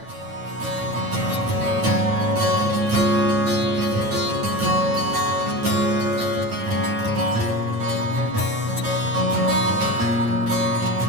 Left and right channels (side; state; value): left; late; 9.1 ms